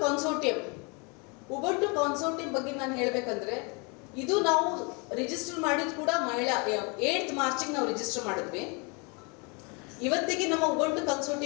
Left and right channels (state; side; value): quieter; right; 31.7 dB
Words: consortium ಬಗ್ಗೆ ನಾನು ಹೇಳಬೇಕಂದ್ರೆ, ಇದು ನಾವು register ಮಾಡಿದ್ ಕೂಡ ಮಹಿಳಾ 8th ಮಾರ್ಚಿಗೆ ನಾವು register ಮಾಡಿದ್ವಿ. ಇವತ್ತಿಗೆ ನಮ್ಮ ಉಬಂಟು